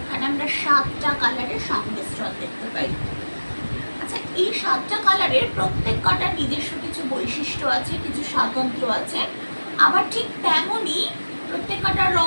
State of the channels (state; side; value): inverted; both; correlation -1.00